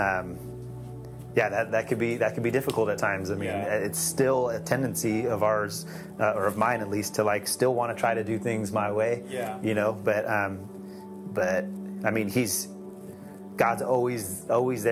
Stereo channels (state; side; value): identical; both; correlation 1.00